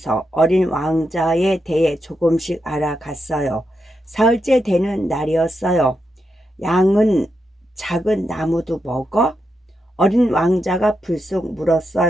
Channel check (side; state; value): both; normal; correlation 0.85